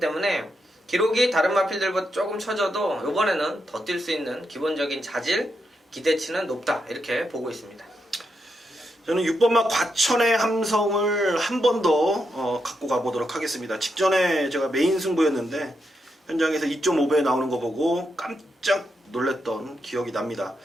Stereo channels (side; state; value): both; normal; correlation 0.83